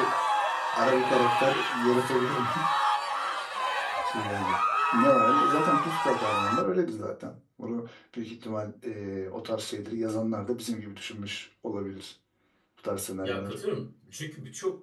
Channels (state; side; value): identical; both; correlation 1.00